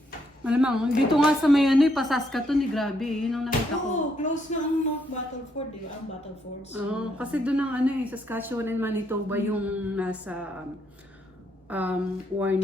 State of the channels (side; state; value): both; normal; correlation 0.74